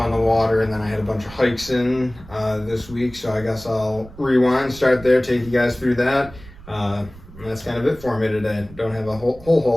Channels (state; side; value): noise; right; rumble, 19 dB below the sound